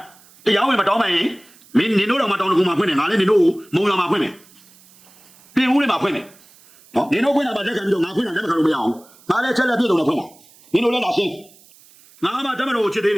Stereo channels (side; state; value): right; noise; hiss, 27 dB below the sound